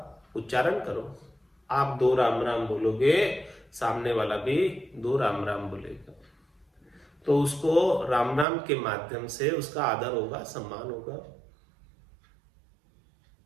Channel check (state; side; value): drops out; left; at 8.5 s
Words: उच्चारण करो। आप 2 राम राम बोलोगे, सामने वाला भी 2 राम राम बोलेगा, तो उसको राम राम के माध्यम से उसका आदर होगा, सम्मान होगा।